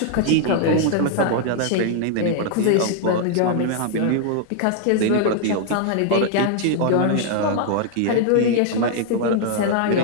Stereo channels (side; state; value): both; different; correlation -0.01